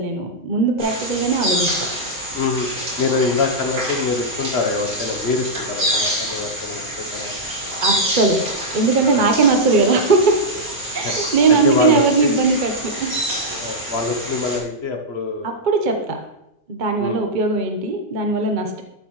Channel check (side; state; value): both; normal; correlation -0.06